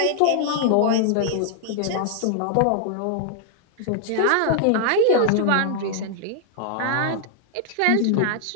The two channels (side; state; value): both; different; correlation 0.00